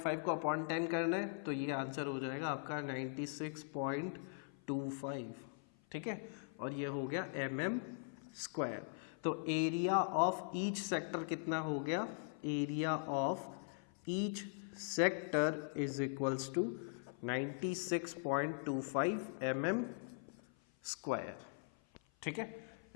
को अपॉन 10 करना है तो ये आंसर हो जाएगा आपका 96.25। ठीक है, और ये हो गया mm²। तो एरिया ऑफ ईच सेक्टर कितना हो गया, area of each sector is equals to 96.25 mm²। ठीक है,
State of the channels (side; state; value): right; silent; 50 dB below the other